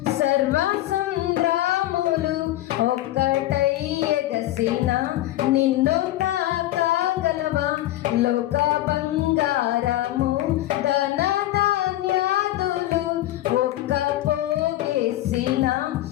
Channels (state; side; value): quieter; right; 15.1 dB